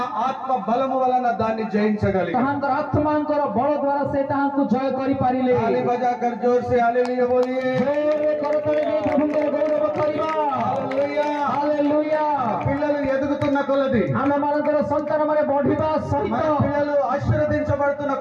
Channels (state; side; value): identical; both; correlation 1.00